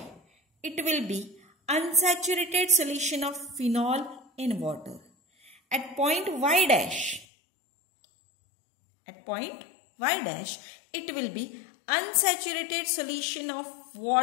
it will be unsaturated solution of phenol in water. At point Y dash, it will be unsaturated solution of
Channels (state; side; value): drops out; right; at 7.2 s